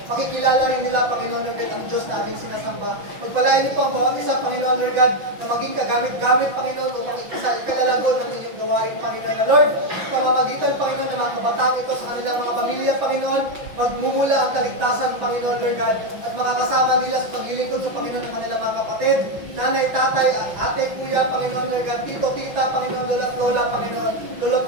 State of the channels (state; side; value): late; left; 5.9 ms